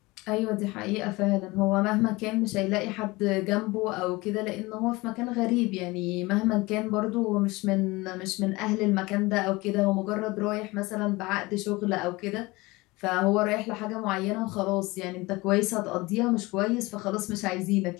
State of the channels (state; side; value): quieter; right; 22.3 dB